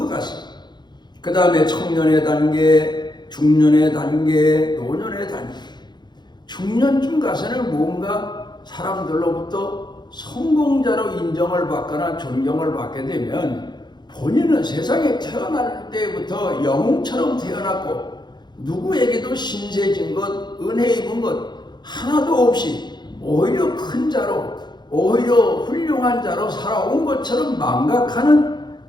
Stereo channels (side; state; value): right; late; 0.21 ms